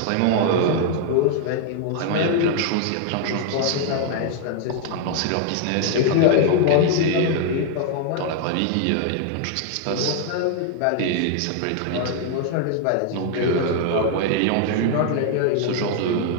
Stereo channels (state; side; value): different; both; correlation 0.00